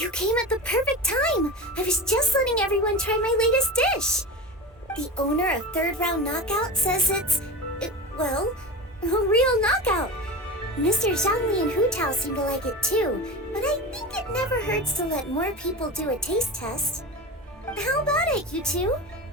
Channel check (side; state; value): both; normal; correlation 0.26